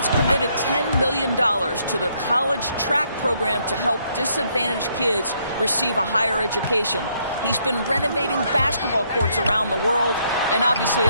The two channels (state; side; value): inverted; both; correlation -0.71